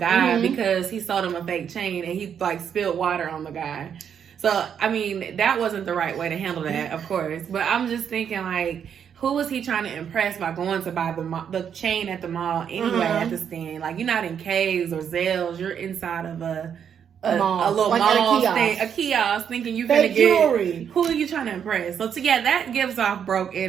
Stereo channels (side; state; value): left; quieter; 8.1 dB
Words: because he sold him a fake chain and he like spilled water on the guy. So, I mean, that wasn't the right way to handle that, of course. But I'm just thinking, like, who was he trying to impress by going to buy the chain at the mall anyway at the stand? Like, you're not in K's or Zales. You're inside of a little like mall a kiosk, thinking you're going to get jewelry. Who are you trying to impress? So, that gives off broke